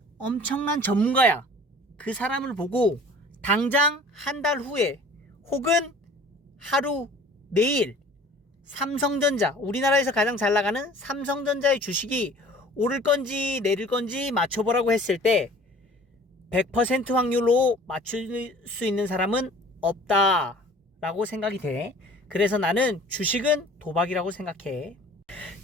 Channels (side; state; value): both; normal; correlation 0.48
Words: 엄청난 전문가야. 그 사람을 보고 당장 한 달 후에 혹은 하루, 내일 삼성전자, 우리나라에서 가장 잘 나가는 삼성전자의 주식이 오를 건지 내릴 건지 맞춰보라고 했을 때 100% 확률로 맞출 수 있는 사람은 없다라고 생각이 돼. 그래서 나는 주식은 도박이라고 생각해.